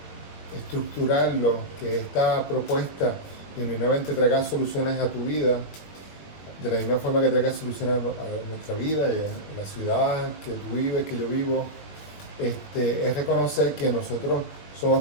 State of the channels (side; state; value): right; late; 21 ms